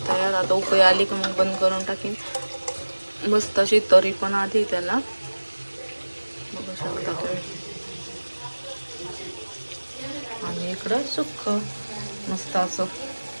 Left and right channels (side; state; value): both; inverted; correlation -1.00